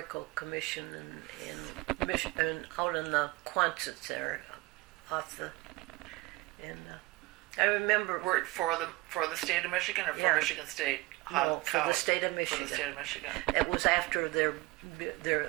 Commission and out in the Quonset there, off the, and I remember. Worked for the state of Michigan or for Yeah. Michigan State? No, for the state of Michigan. For the state of Michigan. It was after the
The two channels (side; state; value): left; quieter; 21.8 dB